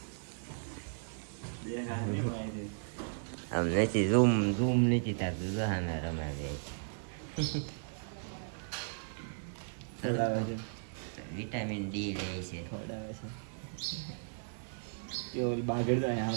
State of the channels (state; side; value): silent; left; 54 dB below the other